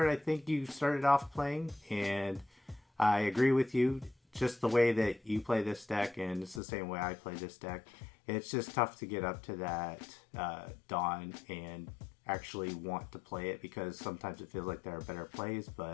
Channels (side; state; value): right; drops out; at 6.6 s